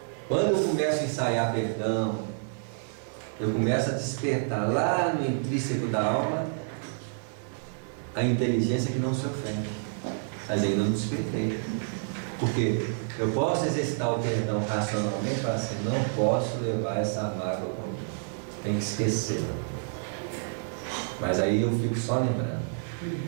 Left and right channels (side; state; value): left; silent; 59 dB below the other